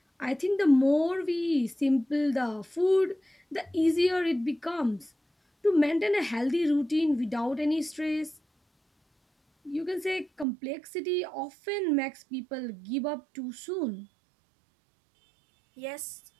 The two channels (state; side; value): drops out; left; at 10.5 s